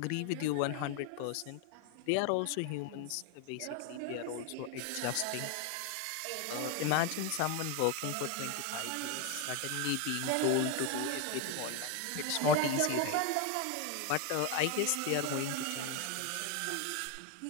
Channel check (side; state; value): both; different; correlation 0.01